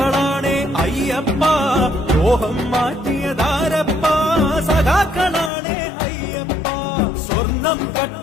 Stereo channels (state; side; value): drops out; right; at 5.5 s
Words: അയ്യപ്പ ലോഹം മാറ്റിയതാരപ്പ സഖാക്കളാണേ അയ്യപ്പ സ്വർണം